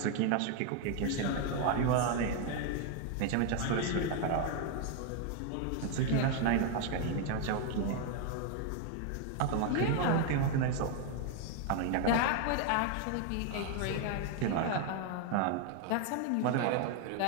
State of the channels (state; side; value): different; both; correlation 0.01